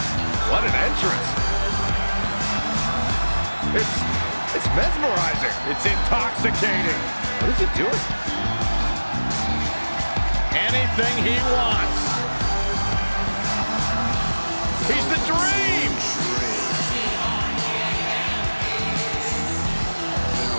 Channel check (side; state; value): both; inverted; correlation -1.00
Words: What an entrance. It's mesmerizing. It's intoxicating. What is he doing? Anything he wants. He's the Dream.